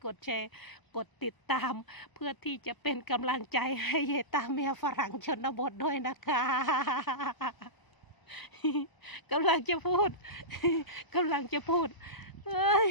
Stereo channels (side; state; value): right; late; 1.0 ms